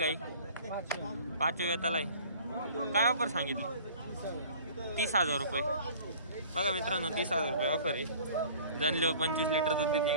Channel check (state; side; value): inverted; both; correlation -0.48